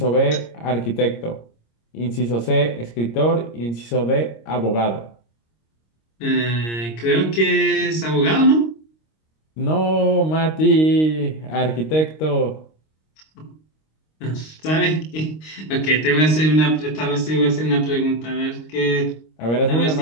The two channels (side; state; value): right; late; 26 ms